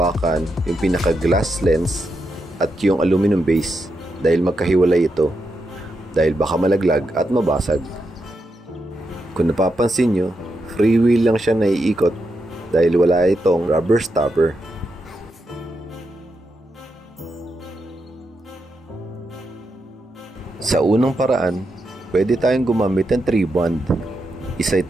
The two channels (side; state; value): both; normal; correlation 0.84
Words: yung pinaka glass lens at yung aluminum base dahil magkahiwalay ito dahil baka malaglag at mabasag. Kung napapansin nyo, free wheel lang siya naiikot dahil wala itong rubber stopper. Sa unang paraan, pwede tayong gumamit ng 3-bond. Isa